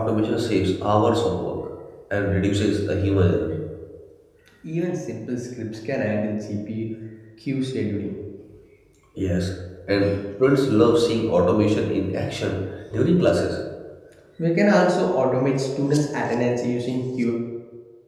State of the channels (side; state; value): both; identical; correlation 1.00